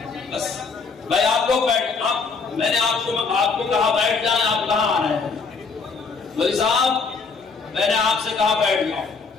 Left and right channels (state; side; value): quieter; right; 4.7 dB